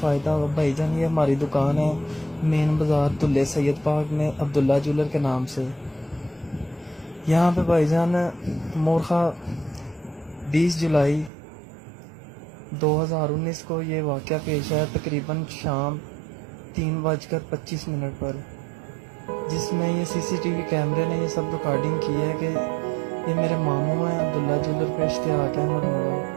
होगा। भाईजान ये हमारी दुकान है मेन बाज़ार दुल्ले सैयद पार्क में, अब्दुल्ला ज्वेलर के नाम से। यहाँ पे भाईजान मोरखा 20 जुलाई 2019 को ये वाक़या पेश आया, तकरीबन शाम 3:25 पर, जिसमें ये सीसीटीवी कैमरे ने ये सब रिकॉर्डिंग की है कि ये मेरे मामू हैं अब्दुल्ला ज्वेलर पे इश्तियाक अहमद मुगल,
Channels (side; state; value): left; drops out; at 11.3 s